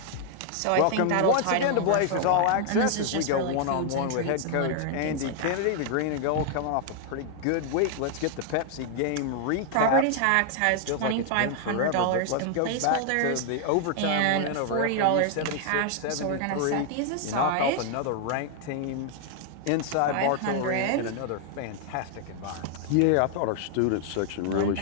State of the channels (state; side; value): different; both; correlation 0.00